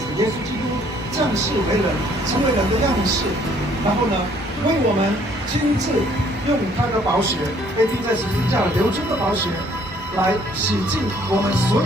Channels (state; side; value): normal; both; correlation 0.61